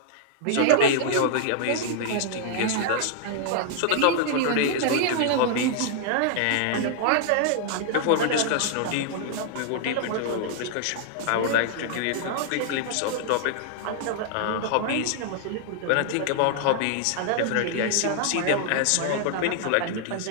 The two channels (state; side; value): different; both; correlation -0.01